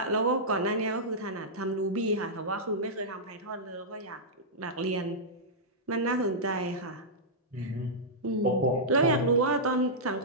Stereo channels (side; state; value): both; normal; correlation -0.12